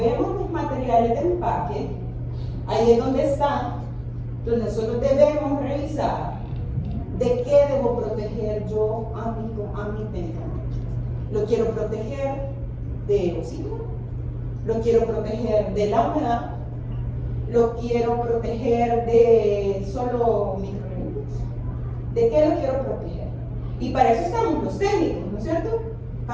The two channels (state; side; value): identical; both; correlation 1.00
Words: los materiales de empaque, ahí es donde está, donde nosotros debemos revisar de qué debo proteger yo a mi medicamento. Lo quiero proteger de oxígeno, lo quiero proteger de la humedad, lo quiero proteger de solo microorganismos. ¿De qué lo quiero proteger? Y para eso estamos los técnicos, ¿no es cierto?